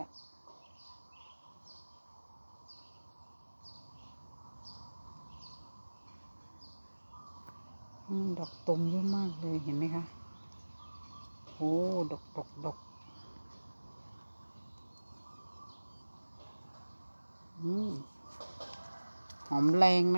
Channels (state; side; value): inverted; both; correlation -1.00